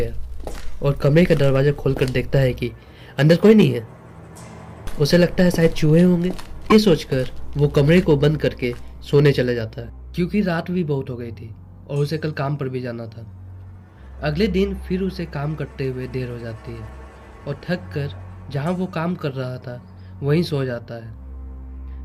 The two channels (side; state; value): both; identical; correlation 1.00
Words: और कमरे का दरवाज़ा खोलकर देखता है कि अंदर कोई नहीं है। उसे लगता है शायद चूहे होंगे। ये सोचकर वो कमरे को बंद करके सोने चले जाता है, क्योंकि रात भी बहुत हो गई थी और उसे कल काम पर भी जाना था। अगले दिन फिर उसे काम करते हुए देर हो जाती है और थक कर जहाँ वो काम कर रहा था वहीं सो जाता है।